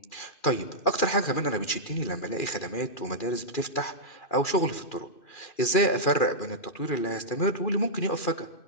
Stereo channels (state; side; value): late; right; 2.4 ms